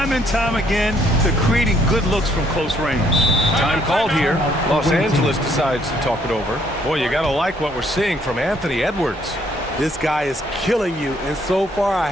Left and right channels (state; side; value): normal; both; correlation 0.67